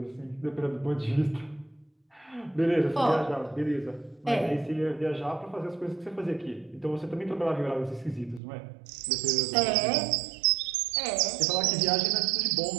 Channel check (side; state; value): left; drops out; at 8.4 s